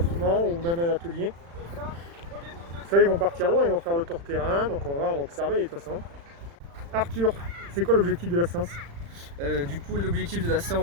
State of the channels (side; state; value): left; late; 35 ms